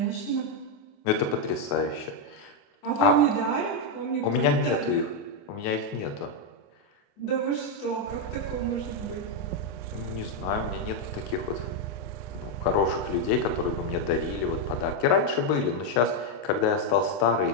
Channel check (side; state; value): right; late; 28 ms